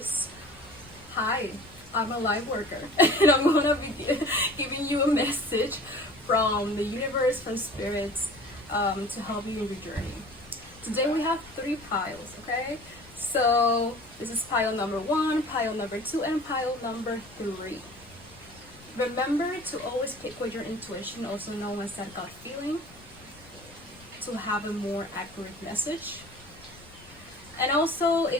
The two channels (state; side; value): noise; left; rumble, 23 dB below the sound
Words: hi, I'm a light worker and I'm gonna be giving you a message from the universe, from spirits, to help you in your journey. Today we have 3 piles, okay? So this is pile number 1, pile number 2, and pile number 3. Remember to always pick with your intuition, also known as that gut feeling, to have a more accurate message. And also,